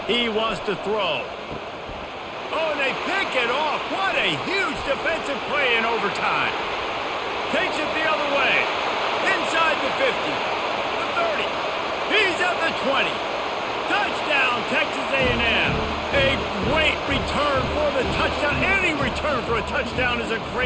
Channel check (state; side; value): identical; both; correlation 1.00